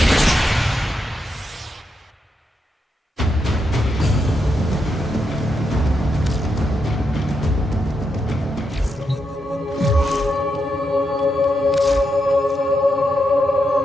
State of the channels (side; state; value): both; normal; correlation 0.83